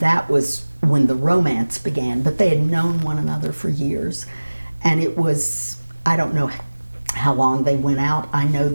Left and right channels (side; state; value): both; inverted; correlation -1.00